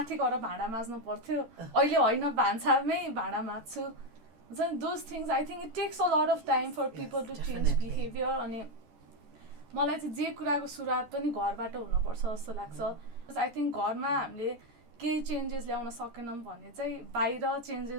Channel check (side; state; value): left; late; 14 ms